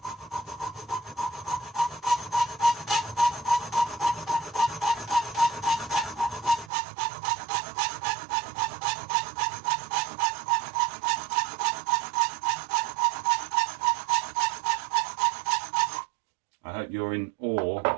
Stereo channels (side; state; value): left; drops out; at 6.7 s